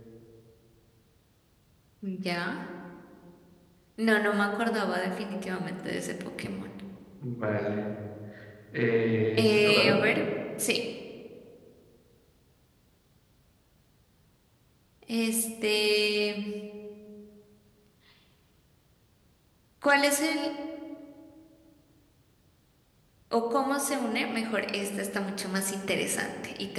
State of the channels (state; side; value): identical; both; correlation 1.00